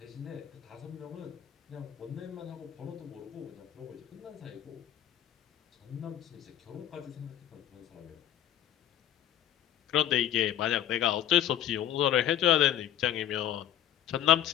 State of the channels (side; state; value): right; quieter; 11.2 dB